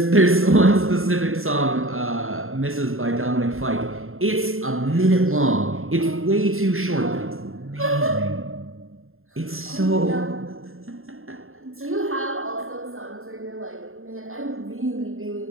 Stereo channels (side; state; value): left; late; 0.61 ms